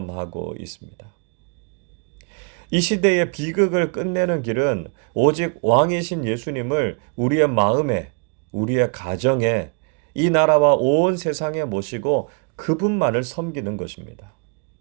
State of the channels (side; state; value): left; quieter; 37.9 dB